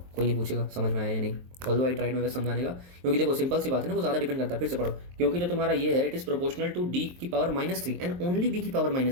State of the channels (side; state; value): left; late; 23 ms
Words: कोई नहीं पूछेगा समझ में आया या नहीं। ऑल्दो आई ट्राइड मेरे समझाने का, क्योंकि देखो सिंपल सी बात है ना, वो ज़्यादा डिपेंड करता है, फिर से पढ़ो, क्योंकि जो तुम्हारा ये है it is proportional to D की पावर -3 एंड ओनली B की पावर